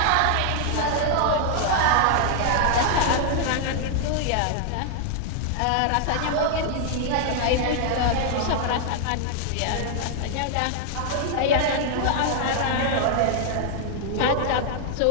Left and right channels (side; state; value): both; different; correlation 0.00